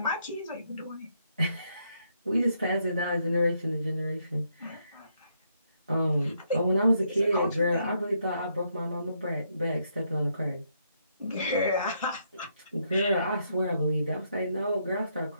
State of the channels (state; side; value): inverted; both; correlation -0.76